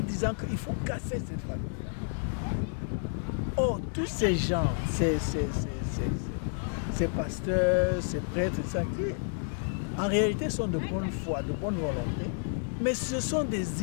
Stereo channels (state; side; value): silent; right; digital silence